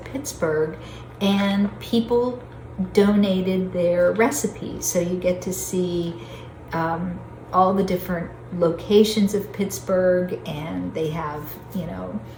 Pittsburgh, and people donated their recipes. So you get to see all the different locations of Pittsburgh, and they have, you know,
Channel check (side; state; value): both; identical; correlation 1.00